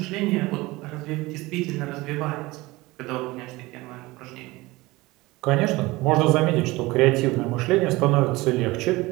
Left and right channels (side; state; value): left; quieter; 20.9 dB